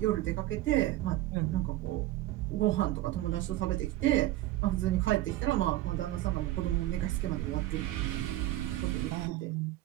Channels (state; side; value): quieter; left; 15.6 dB